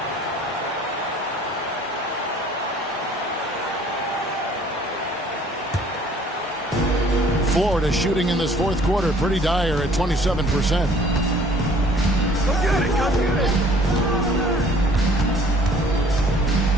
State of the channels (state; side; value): normal; both; correlation 0.55